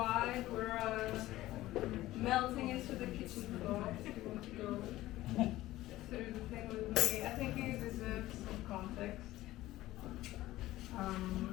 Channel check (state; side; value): quieter; right; 16.2 dB